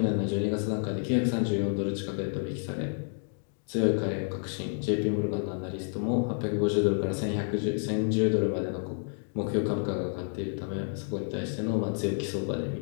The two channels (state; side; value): silent; right; 58 dB below the other